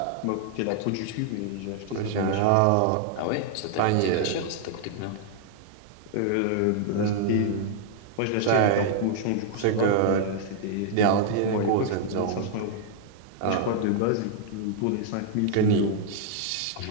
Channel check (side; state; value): both; different; correlation -0.01